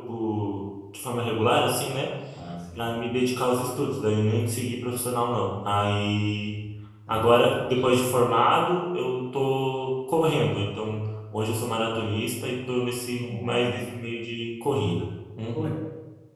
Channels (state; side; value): identical; both; correlation 1.00